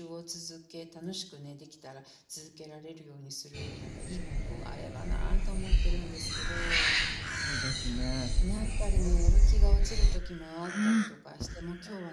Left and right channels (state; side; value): identical; both; correlation 1.00